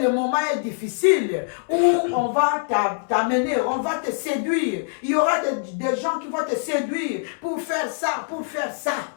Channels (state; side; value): silent; right; 63 dB below the other